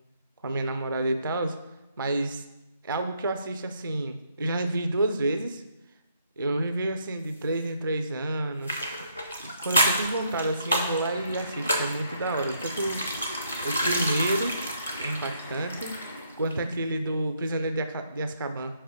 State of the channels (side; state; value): both; inverted; correlation -0.72